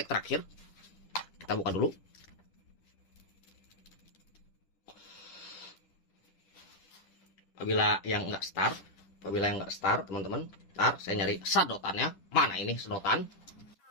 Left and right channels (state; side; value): late; right; 10 ms